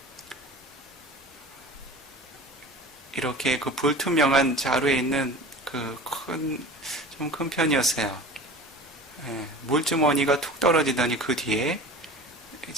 이렇게 그 불투명한 자루에 있는 그 좀 큰 편이었어요. 물주머니가 툭 떨어지더니 그 뒤에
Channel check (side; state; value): both; normal; correlation 0.38